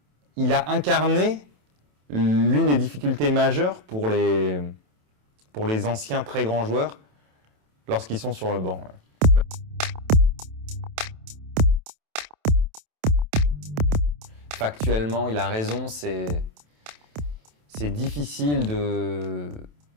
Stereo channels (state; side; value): late; left; 27 ms